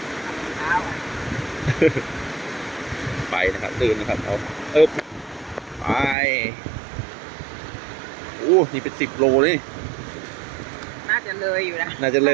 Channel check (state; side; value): drops out; left; at 6.2 s